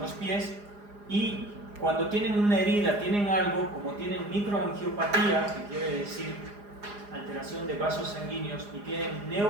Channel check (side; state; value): left; late; 4.9 ms